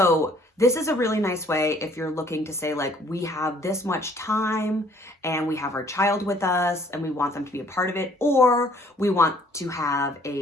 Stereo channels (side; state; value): both; normal; correlation 0.59